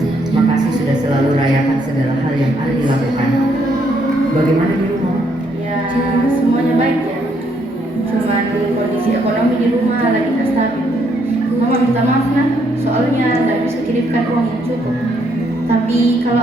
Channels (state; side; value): normal; both; correlation 0.72